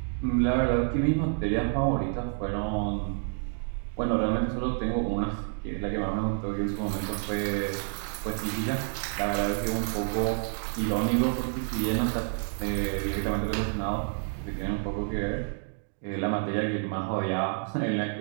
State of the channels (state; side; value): silent; left; 56 dB below the other